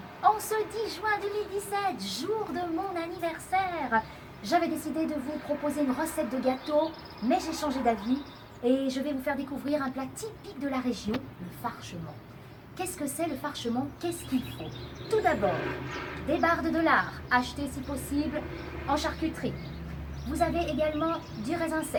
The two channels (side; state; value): both; identical; correlation 1.00